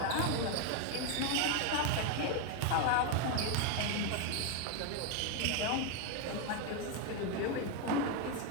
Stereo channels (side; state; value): both; different; correlation 0.01